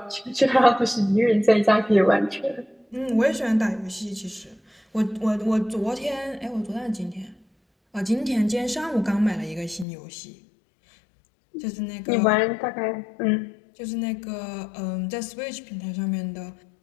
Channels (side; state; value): right; drops out; at 9.9 s